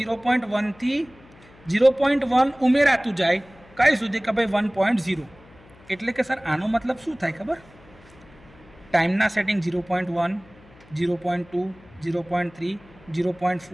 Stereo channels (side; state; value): left; noise; hum, 25 dB below the sound